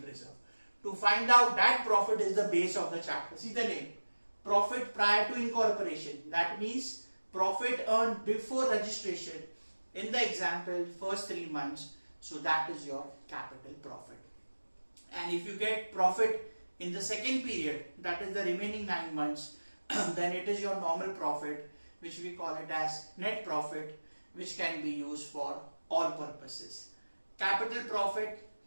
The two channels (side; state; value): both; inverted; correlation -1.00